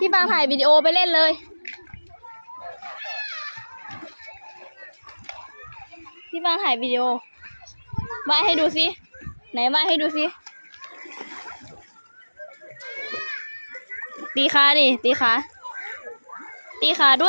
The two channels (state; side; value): inverted; both; correlation -1.00